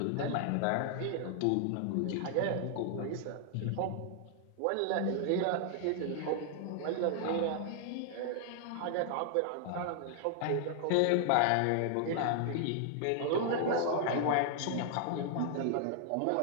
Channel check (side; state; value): both; different; correlation 0.00